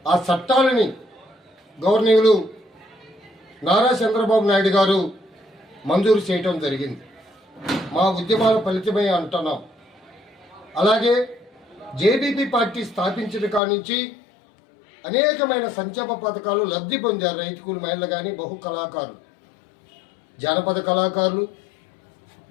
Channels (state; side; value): drops out; right; at 13.6 s